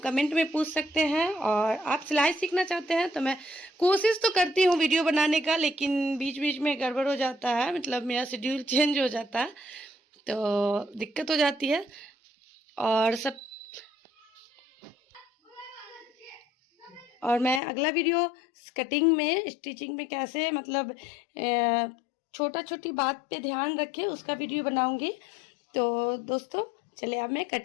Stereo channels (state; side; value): drops out; right; at 17.6 s